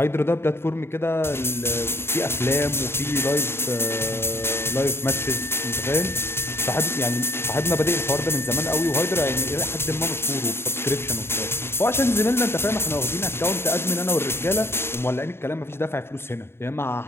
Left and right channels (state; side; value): late; right; 0.12 ms